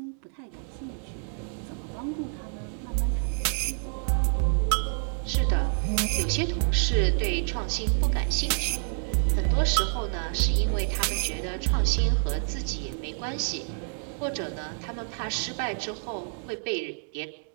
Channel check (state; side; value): silent; left; 59 dB below the other